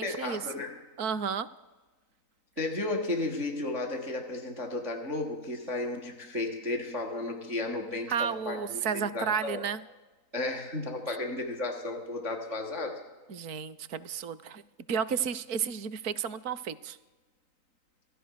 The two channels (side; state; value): left; late; 3.9 ms